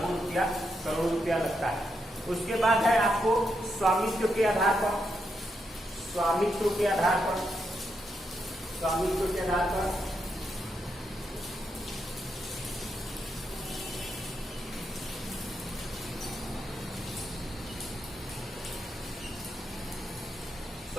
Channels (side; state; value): both; normal; correlation 0.82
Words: रुपया, करोड़ों रुपया लगता है। उसके बाद है आपको स्वामित्व के आधार पर, स्वामित्व के आधार पर, स्वामित्व के आधार पर